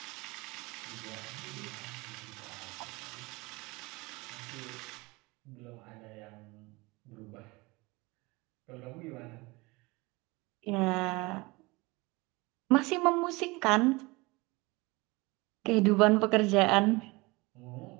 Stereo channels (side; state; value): left; quieter; 24.0 dB